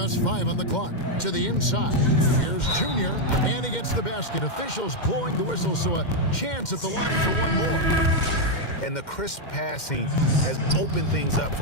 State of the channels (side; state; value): right; late; 2.1 ms